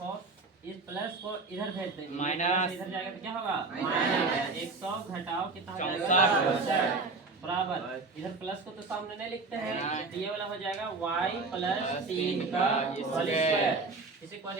इस प्लस को इधर भेज देंगे, माइनस। इधर जाएगा तो क्या होगा? माइनस 100 घटाओ कितना हो जाएगा? 64 बराबर। इधर प्लस को तो सामने नहीं लिखते हैं, नहीं। तो ये वाला हो जाएगा y प्लस 3 का होल स्क्वायर। स्क्वायर। किसी को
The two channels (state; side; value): quieter; left; 3.8 dB